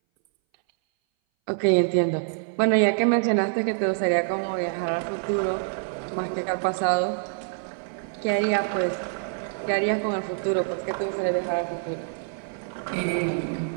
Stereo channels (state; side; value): silent; left; 60 dB below the other